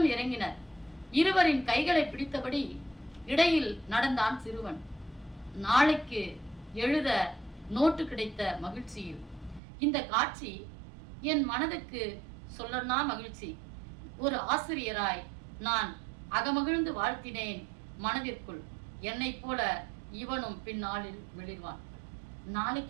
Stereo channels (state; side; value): drops out; left; at 9.6 s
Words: இறங்கினர். இருவரின் கைகளை பிடித்தபடி இடையில் நடந்தான் சிறுவன். நாளைக்கு எழுத நோட்டு கிடைத்த மகிழ்ச்சியில் இந்த காட்சி என் மனதுக்கு சொல்லனா மகிழ்ச்சி. ஒரு ஆசிரியராய் நான் அகமகிழ்ந்து வாழ்த்தினேன் மனதிற்குள். என்னை போல இவனும் பின்னாளில் வெளிர்வான். நாளைக்கு